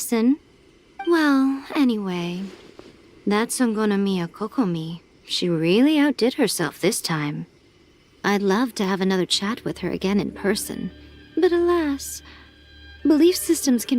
Well, anyway, that Songonomiya Kokomi, she really outdid herself this time. I'd love to have another chat with her again in person, but alas, belief systems can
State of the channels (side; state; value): both; identical; correlation 1.00